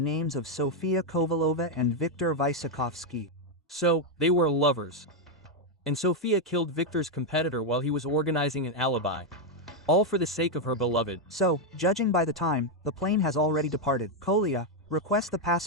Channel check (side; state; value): both; normal; correlation 0.02